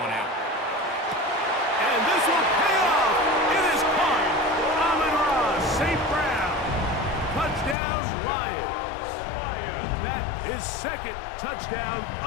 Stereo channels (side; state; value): right; drops out; at 7.8 s